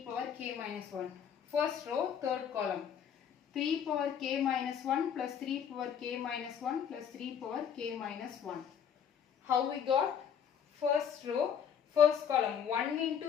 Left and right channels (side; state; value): right; quieter; 8.1 dB